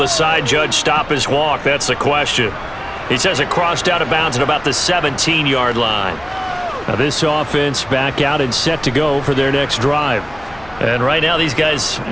side judge stop his walk? That's the question. He says it crossed out of bounds at about the 17-yard line. Now this offense back out and set to go for their next drive. And right now these guys,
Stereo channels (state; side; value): noise; left; hum, 23 dB below the sound